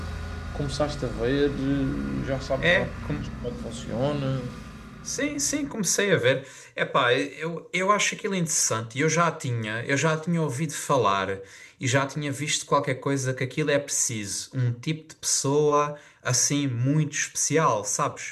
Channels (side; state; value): both; identical; correlation 1.00